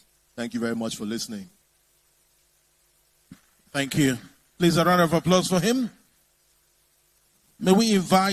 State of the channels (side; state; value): both; identical; correlation 1.00